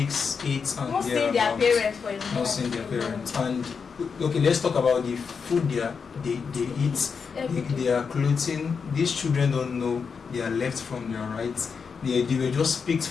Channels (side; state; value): right; quieter; 5.8 dB